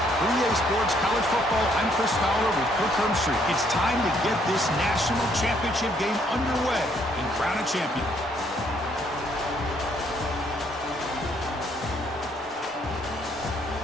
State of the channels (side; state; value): both; normal; correlation 0.68